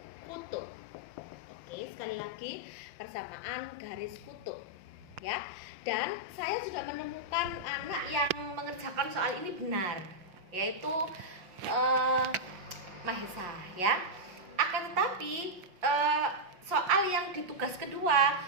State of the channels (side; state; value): left; late; 5.7 ms